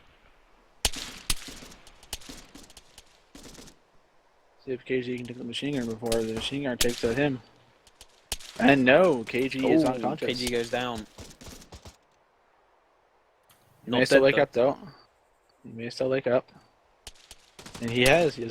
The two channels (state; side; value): identical; both; correlation 1.00